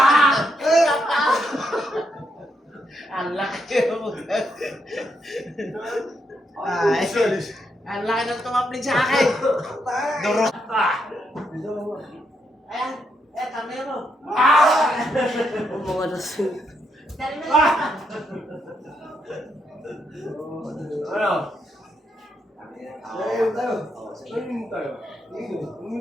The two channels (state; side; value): normal; both; correlation 0.79